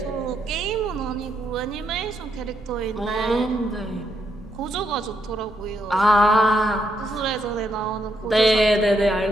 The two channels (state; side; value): normal; both; correlation 0.77